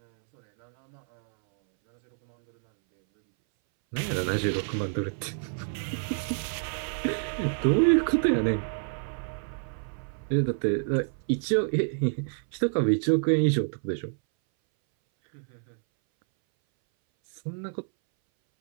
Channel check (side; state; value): left; silent; 59 dB below the other